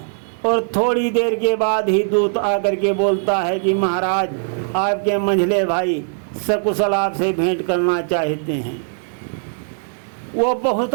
और थोड़ी देर के बाद ही दूत आकर के बोलता है कि महाराज आपके मंझले भाई सकुशल आपसे भेंट करना चाहते हैं। वो बहुत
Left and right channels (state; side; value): silent; left; 64 dB below the other